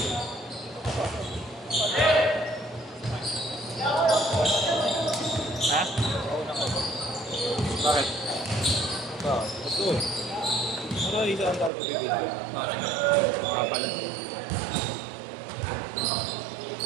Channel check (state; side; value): drops out; left; at 11.7 s